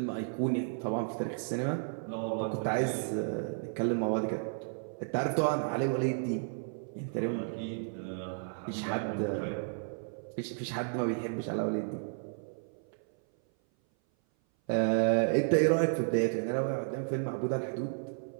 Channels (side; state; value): left; silent; 56 dB below the other